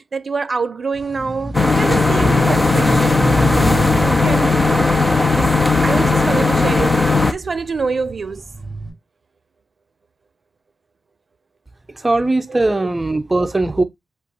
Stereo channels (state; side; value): normal; both; correlation 0.89